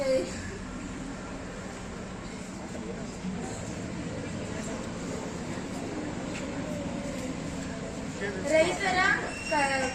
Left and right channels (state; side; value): identical; both; correlation 1.00